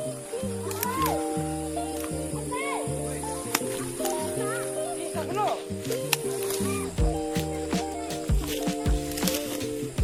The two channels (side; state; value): both; identical; correlation 1.00